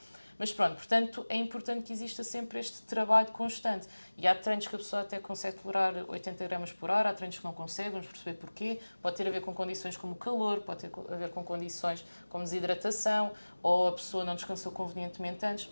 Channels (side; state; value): both; inverted; correlation -1.00